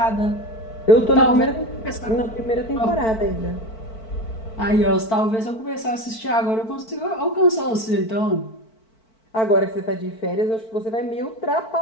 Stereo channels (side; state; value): right; late; 4.5 ms